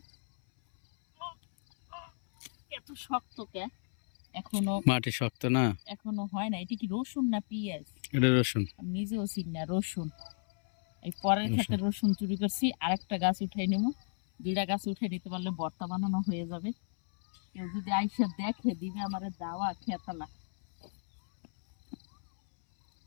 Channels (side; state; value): right; silent; 56 dB below the other